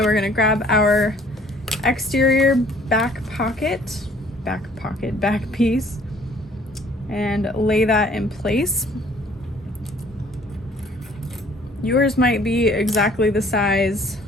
we're gonna grab our exterior back piece and lay that in place. Yours might be exactly the size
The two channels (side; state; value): both; normal; correlation 0.57